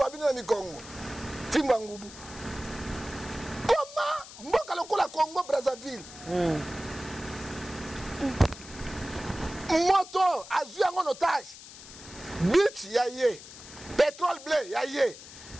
bino na mikongo fimbo ya ngubu koma mboka lokola Congo Brazzaville moto azwi yango en otage bit ya ye pétrole blé ya ye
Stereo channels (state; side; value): noise; left; hiss, 16 dB below the sound